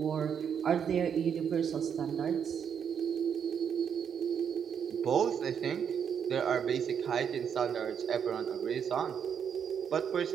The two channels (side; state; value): left; quieter; 7.7 dB